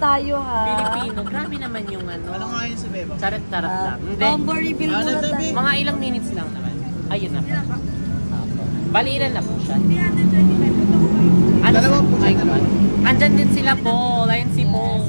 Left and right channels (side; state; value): both; inverted; correlation -1.00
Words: ha. Pilipino. Grabe naman yung Ano ano. nga yun si Bebang? Charot-charot lang. Hindi. Convo reveal Ano muna tabi? tayo. Mga ilang minutes lang naman. Ayun na po. Apo. Bali, ilan na po siya? Ano? Dalawa po siya, Ay, dalawa. andyan din sila po. Ayun si Paul.